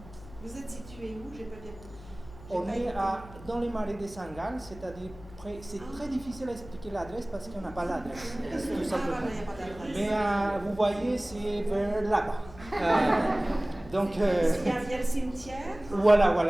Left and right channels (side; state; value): left; noise; hum, 18 dB below the sound